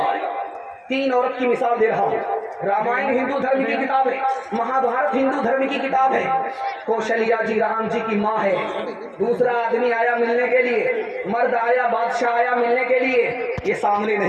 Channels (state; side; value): identical; both; correlation 1.00